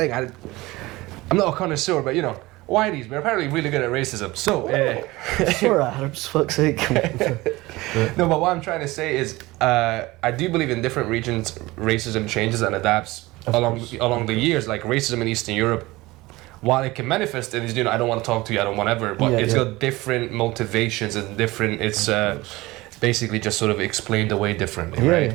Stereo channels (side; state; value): left; quieter; 20.3 dB